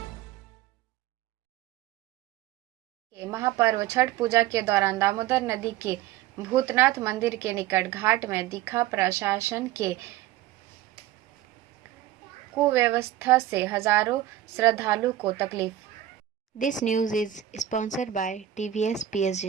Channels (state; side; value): quieter; left; 12.6 dB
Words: महापर्व छठ पूजा के दौरान दामोदर नदी के भूतनाथ मंदिर के निकट घाट में दिखा प्रशासन के कुव्यवस्था से हजारों श्रद्धालु को तकलीफ। This news is sponsored by TVS